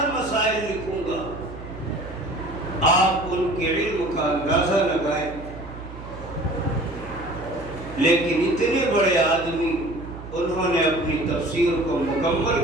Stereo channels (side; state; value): right; noise; hum, 13 dB below the sound